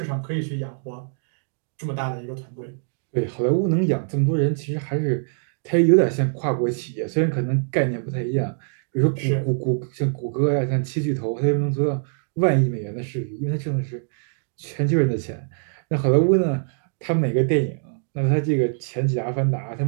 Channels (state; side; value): silent; left; digital silence